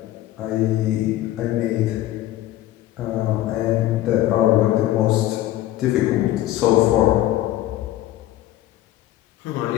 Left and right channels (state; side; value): quieter; right; 14.4 dB